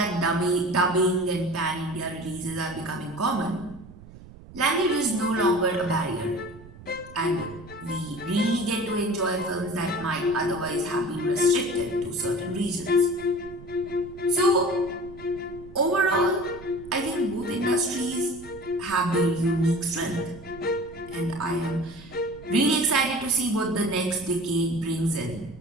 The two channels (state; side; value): noise; right; rumble, 18 dB below the sound